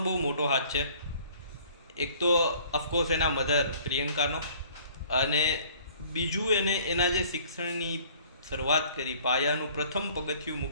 બહુ મોટો હાથ છે. એક તો ઓફકોર્સ એના મધર પ્રિયંકાનો, અને બીજું એના જે શિક્ષણની શરૂઆત કરી, પાયાનું પ્રથમ પગથિયું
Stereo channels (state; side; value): inverted; both; correlation -0.54